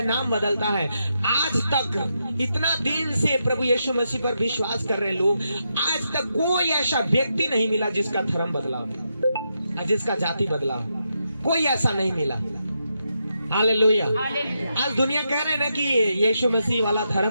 नाम बदलता है, आज तक इतना दिन से प्रभु यीशु मसीह पर विश्वास कर रहे लोग, आज तक कोई ऐसा व्यक्ति नहीं मिला जिसका धर्म बदला, जिसका जाति बदला, कोई ऐसा नहीं मिला। हालेलुया। आज दुनिया कह रहे हैं ना कि यीशु मसीह वाला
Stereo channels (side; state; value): both; inverted; correlation -0.83